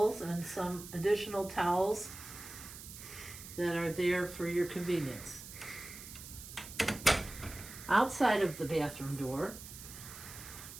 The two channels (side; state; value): right; noise; hiss, 13 dB below the sound